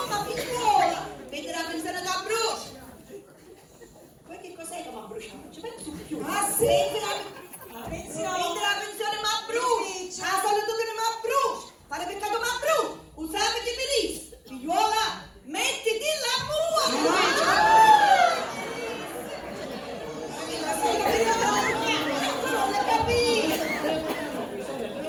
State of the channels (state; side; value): identical; both; correlation 1.00